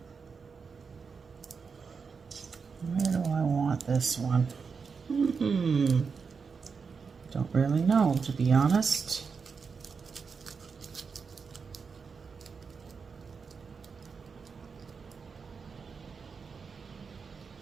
Where do I want this one? Don't really know, to be honest.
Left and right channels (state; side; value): quieter; left; 5.4 dB